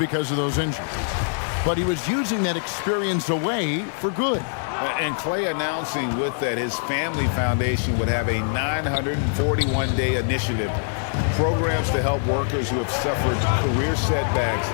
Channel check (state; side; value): silent; right; 55 dB below the other